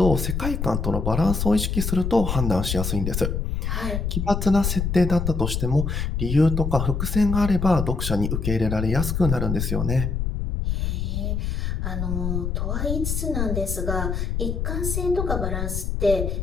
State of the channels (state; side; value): noise; left; rumble, 1 dB below the sound